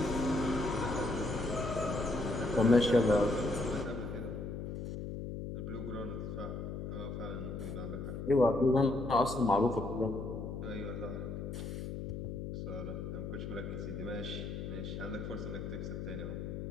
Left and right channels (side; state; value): left; noise; hum, 6 dB below the sound